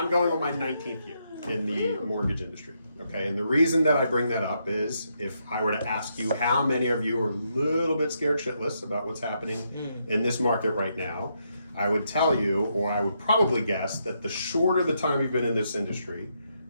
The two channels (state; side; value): inverted; both; correlation -0.78